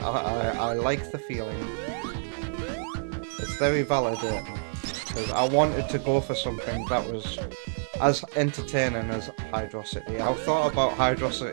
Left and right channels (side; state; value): left; silent; digital silence